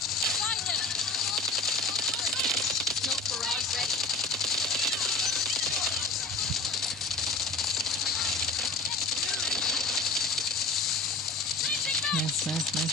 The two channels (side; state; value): right; quieter; 3.5 dB